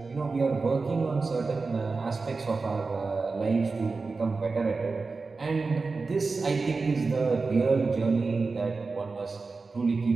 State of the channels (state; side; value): quieter; left; 4.1 dB